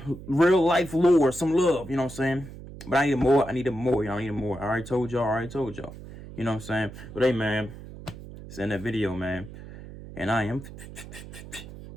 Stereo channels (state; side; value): noise; right; hum, 14 dB below the sound